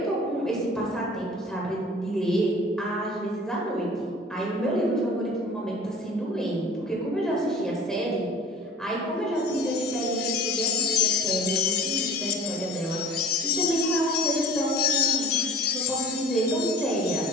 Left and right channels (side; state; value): both; normal; correlation 0.42